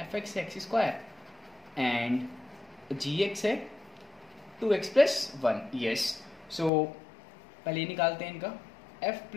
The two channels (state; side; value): drops out; right; at 6.7 s